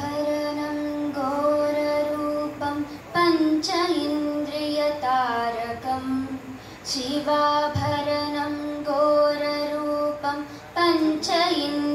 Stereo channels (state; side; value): identical; both; correlation 1.00